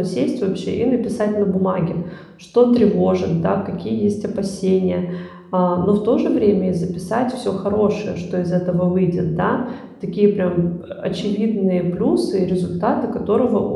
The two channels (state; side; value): identical; both; correlation 1.00